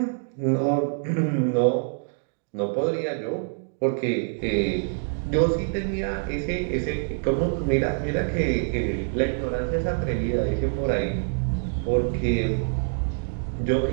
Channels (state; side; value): silent; left; digital silence